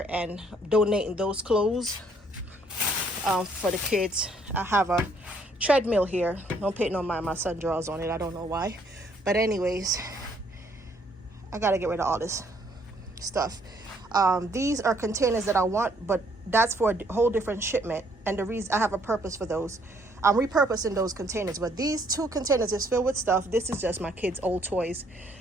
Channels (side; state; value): both; normal; correlation 0.66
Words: and donating those clothes for the kids. I have a treadmill here. Don't pay no mind, my son draws on it. I don't know why. But anyways, I got to get rid of all this stuff. These are containers that I want, but that's for a whole different shipment. And the reason I have a purpose for those. I'm repurposing those containers, but these 2 containers is filled with stuff. This is just my kids' old toys.